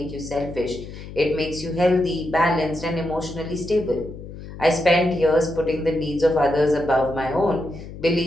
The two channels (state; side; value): noise; left; hum, 13 dB below the sound